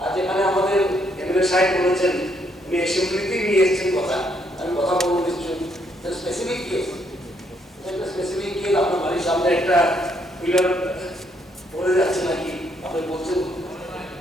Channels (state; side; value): normal; both; correlation 0.72